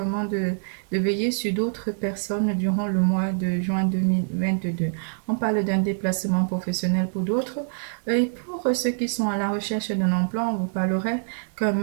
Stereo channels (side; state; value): left; silent; digital silence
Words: de veiller sur d'autres personnes durant le mois de juin 2022. On parle d'un déplacement professionnel pour d'autres. Et pour ceux qui sont à la recherche d'un emploi, on vous parlerait qu'un